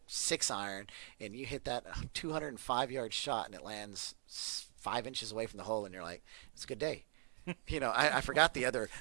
6-iron and you hit that 205-yard shot and it lands 5 inches away from the hole, and you're like, it's a good day. I forgot the other.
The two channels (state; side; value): silent; left; 50 dB below the other